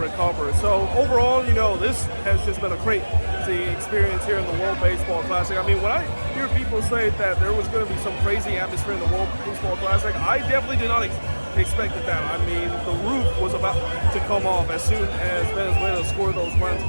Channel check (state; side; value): inverted; both; correlation -1.00